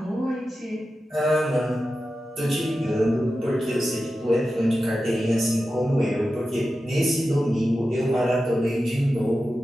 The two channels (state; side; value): normal; both; correlation 0.92